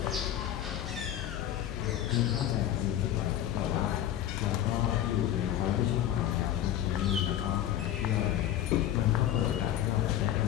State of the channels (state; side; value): quieter; right; 11.8 dB